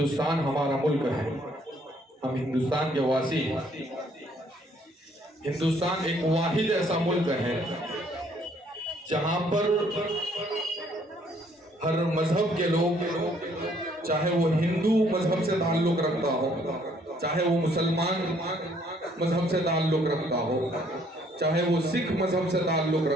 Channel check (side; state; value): both; normal; correlation 0.64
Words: ہمارا ملک ہے، ہم ہندوستان کے واسی ہیں۔ ہندوستان ایک واحد ایسا ملک ہے جہاں پر ہر مذہب کے لوگ، چاہے وہ ہندو مذہب سے تعلق رکھتا ہو، چاہے وہ مسلمان مذہب سے تعلق رکھتا ہو، چاہے وہ سکھ مذہب سے تعلق